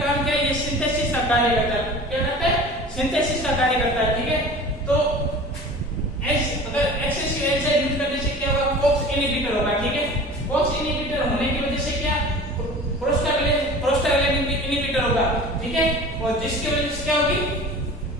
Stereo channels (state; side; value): normal; both; correlation 0.39